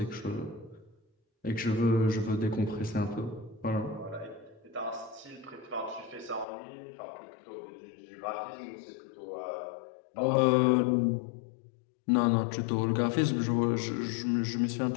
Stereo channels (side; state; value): right; drops out; at 6.5 s